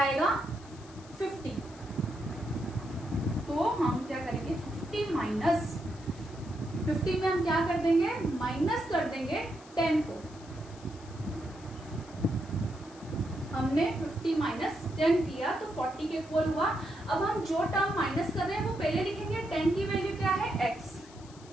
50। तो हम क्या करेंगे, 50 माइनस 50 में हम क्या कर देंगे, माइनस कर देंगे 10 को। हमने 50 माइनस 10 किया तो 40 के इक्वल हुआ। अब हम जो टर्म माइनस कर रहे हैं वो पहले लिखेंगे, 10 की वैल्यू क्या है, x,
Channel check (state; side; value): noise; left; hiss, 23 dB below the sound